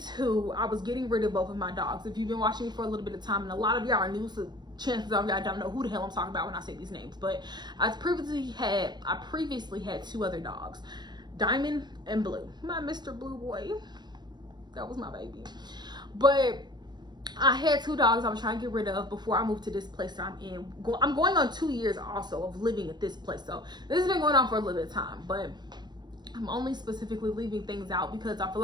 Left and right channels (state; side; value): late; left; 0.21 ms